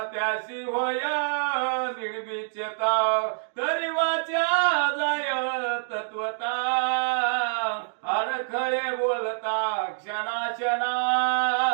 त्याशी होय निर्विचता तरी वाचा जाय तत्वता अडखळे बोलता क्षणा क्षणा.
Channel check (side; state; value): left; silent; digital silence